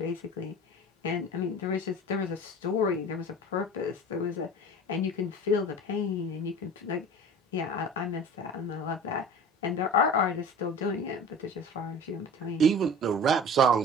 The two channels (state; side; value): normal; both; correlation 0.39